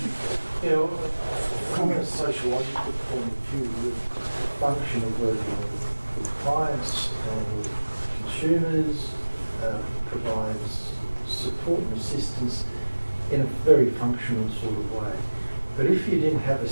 From a sociological point of view, the function of working with clients and with consumers provides support and assistance in a very functional sort of way. But if you didn't have a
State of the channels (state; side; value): inverted; both; correlation -1.00